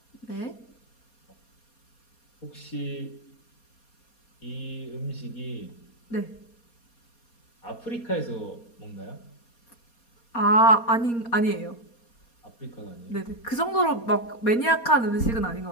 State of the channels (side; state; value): right; late; 4.2 ms